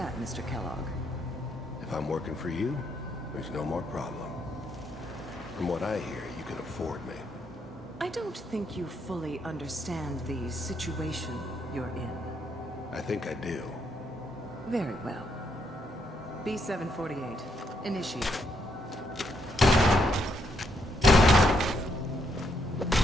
Mr. Kellogg? If I'm working for you, there's no more problem. From what I hear, you can afford me. I don't think you fully understand the situation you're in. I think I do. Very well. B-748, initiate.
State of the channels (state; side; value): normal; both; correlation 0.76